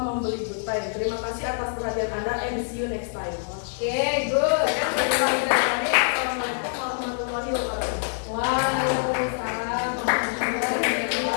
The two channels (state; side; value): silent; right; 62 dB below the other